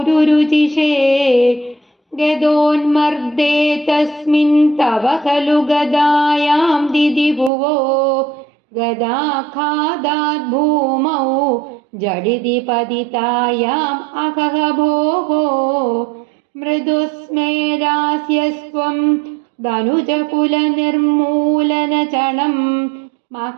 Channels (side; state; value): left; drops out; at 7.5 s